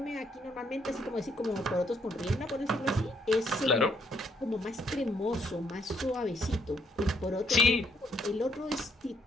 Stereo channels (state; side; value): normal; both; correlation 0.71